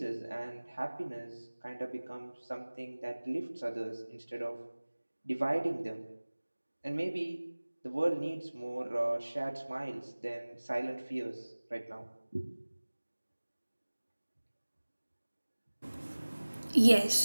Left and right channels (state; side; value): inverted; both; correlation -1.00